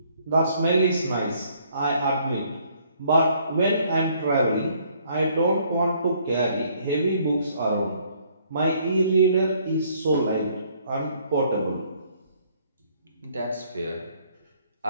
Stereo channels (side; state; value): both; inverted; correlation -0.65